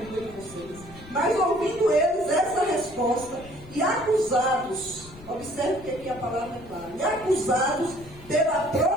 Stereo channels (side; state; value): left; noise; rumble, 19 dB below the sound